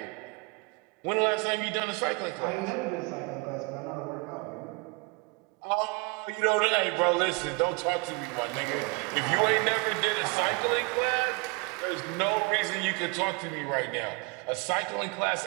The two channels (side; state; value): left; quieter; 28.4 dB